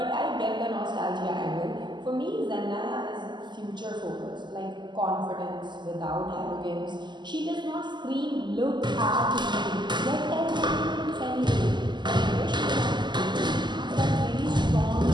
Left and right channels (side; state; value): left; late; 0.21 ms